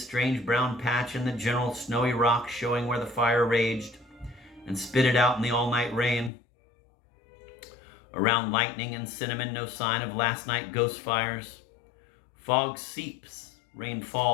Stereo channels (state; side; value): drops out; right; at 6.3 s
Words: brown patch in the general snowy rock showing where the fire raged, and spit it out in the all-night rain. Around lightning and cinnamon, no sign of last night ghost fires. Fog seeps, rain